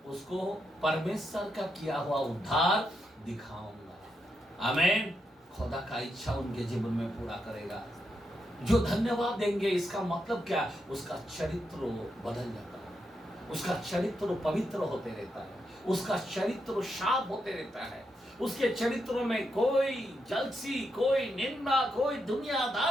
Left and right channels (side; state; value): both; normal; correlation 0.83